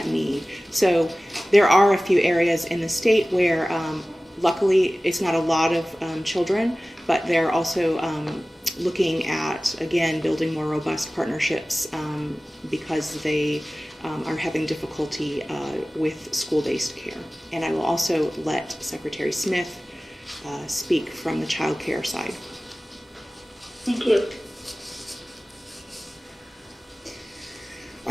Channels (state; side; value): normal; both; correlation 0.97